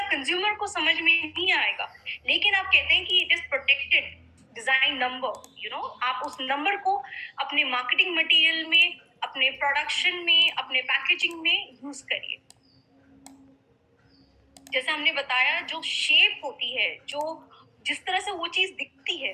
कंज्यूमर को समझ में नहीं आएगा। लेकिन आप कहते हैं कि it is protected design number, आप उस नंबर को अपने मार्केटिंग मटेरियल में, अपने प्रोडक्शन में, अपने पैकेजिंग में यूज करिए। जैसे हमने बताया, जो शेप होती है, जो जिस तरह से वो चीज दिखती है,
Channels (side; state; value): both; identical; correlation 1.00